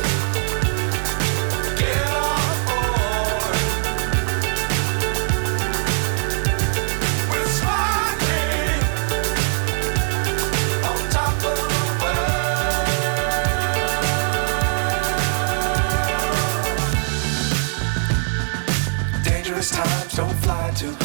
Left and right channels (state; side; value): silent; left; 55 dB below the other